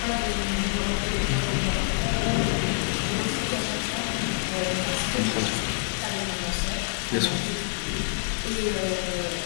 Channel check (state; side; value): silent; right; digital silence